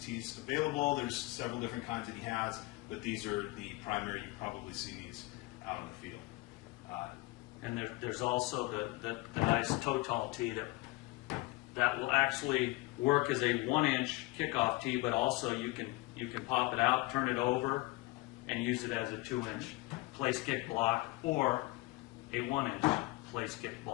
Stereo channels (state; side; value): quieter; right; 21.2 dB